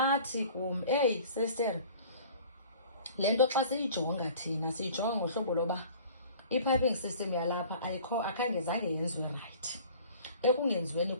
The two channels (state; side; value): inverted; both; correlation -0.47